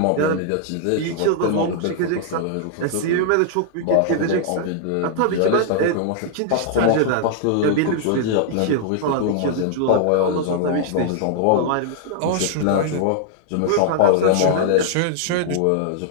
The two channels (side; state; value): both; different; correlation -0.01